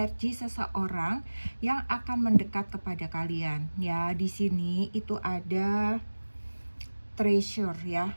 seseorang yang akan mendekat kepada kalian. Ya, di sini itu ada treasure ya.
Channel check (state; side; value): inverted; both; correlation -1.00